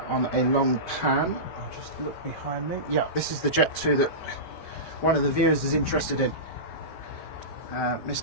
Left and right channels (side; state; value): right; late; 5.2 ms